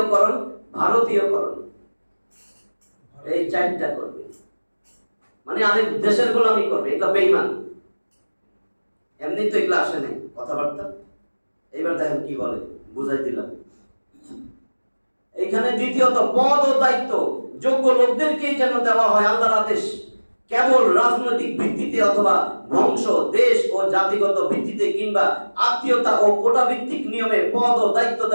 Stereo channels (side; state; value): both; inverted; correlation -1.00